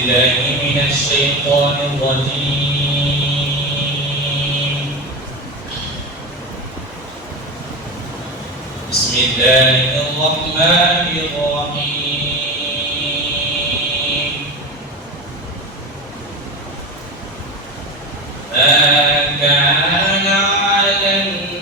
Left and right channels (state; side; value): normal; both; correlation 0.24